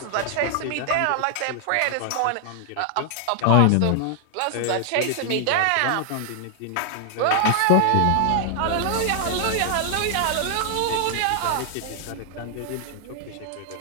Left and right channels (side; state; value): both; different; correlation 0.00